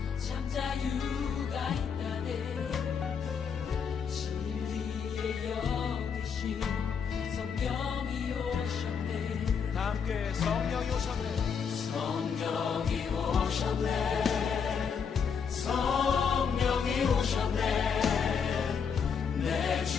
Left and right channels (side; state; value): right; quieter; 6.5 dB